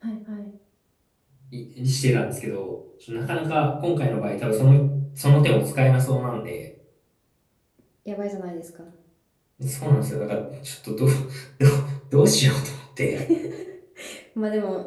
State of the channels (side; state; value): both; identical; correlation 1.00